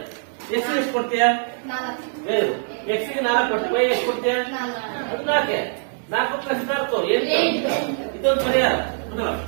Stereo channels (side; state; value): left; silent; 64 dB below the other